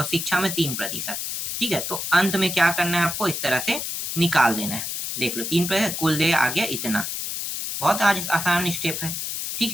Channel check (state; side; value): noise; left; hiss, 4 dB below the sound